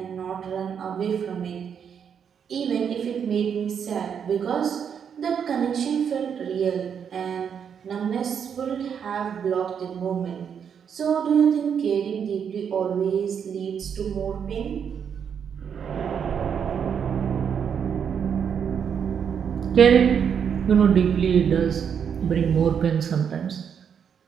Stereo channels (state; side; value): quieter; left; 7.5 dB